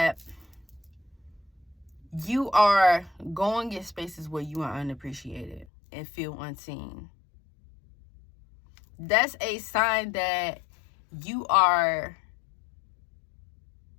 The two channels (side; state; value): right; drops out; at 5.7 s